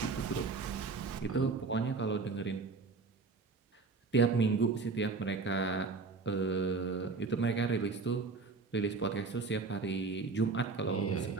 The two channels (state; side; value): quieter; left; 4.3 dB